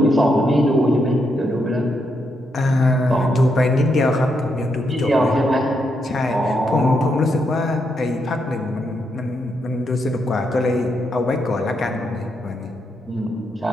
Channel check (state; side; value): normal; both; correlation 0.80